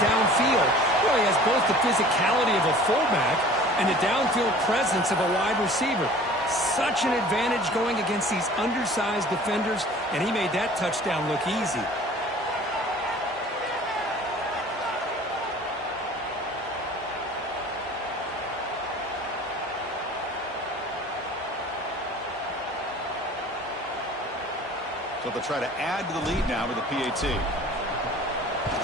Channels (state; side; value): normal; both; correlation 0.46